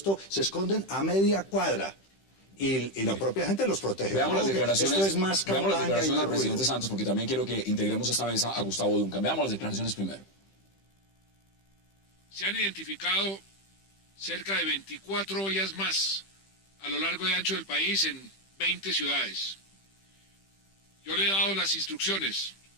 se esconden a media cuadra. Y la propia gente los protege. Veamos las declaraciones, esto es más veamos las declaraciones del ruido. presidente Santos, porque también quiero que integremos a esta mesa a Gustavo Duncan. Veamos las declaraciones primero. Se han identificado cerca de 24 ollas más a lo largo y ancho del país en 20 ciudades. Yo le he dado las instrucciones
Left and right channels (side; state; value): right; late; 15 ms